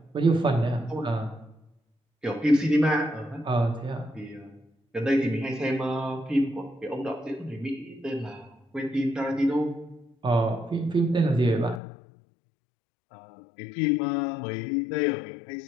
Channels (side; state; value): right; drops out; at 11.8 s